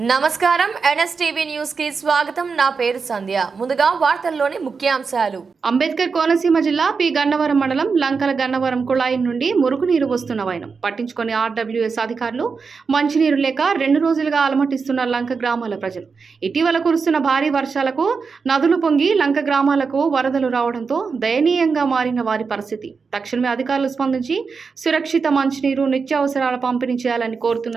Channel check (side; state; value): left; quieter; 5.1 dB